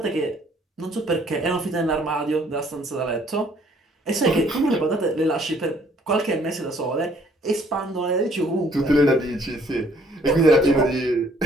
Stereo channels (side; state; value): both; normal; correlation 0.62